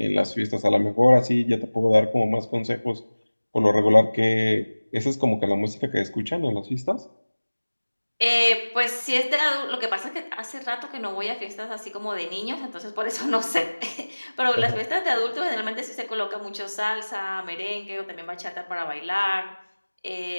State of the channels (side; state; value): both; inverted; correlation -1.00